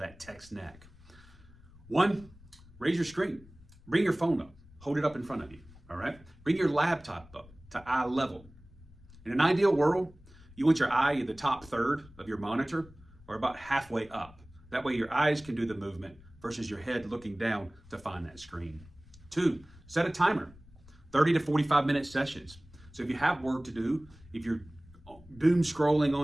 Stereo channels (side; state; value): left; noise; rumble, 23 dB below the sound